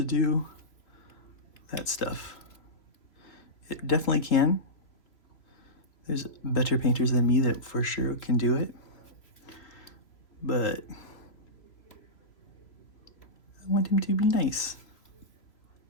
do that stuff. It definitely can. There's better painters than me that for sure can do it. But I want him to be nice.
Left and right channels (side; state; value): right; late; 3.0 ms